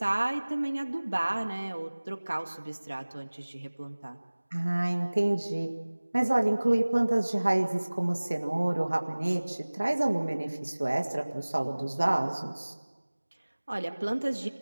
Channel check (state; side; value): inverted; both; correlation -1.00